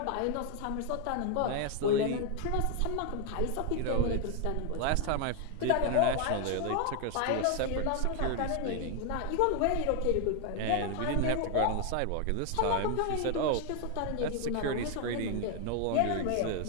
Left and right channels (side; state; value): both; different; correlation 0.01